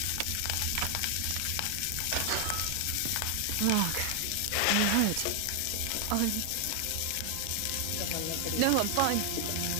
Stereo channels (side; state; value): both; different; correlation 0.00